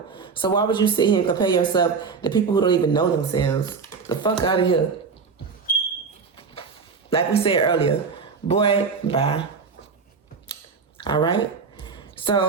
So why would you sit here and compare yourself to people who don't even know themselves? The fuck out of here. Like we said earlier, boy, bye. All right?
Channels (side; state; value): left; quieter; 5.3 dB